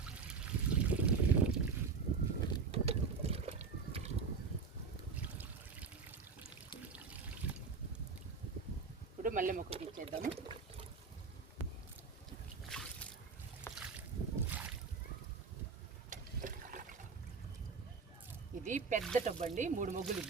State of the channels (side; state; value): left; quieter; 5.1 dB